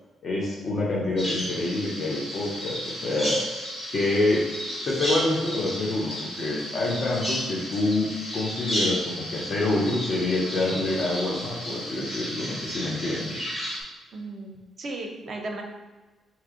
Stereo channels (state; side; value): normal; both; correlation 0.77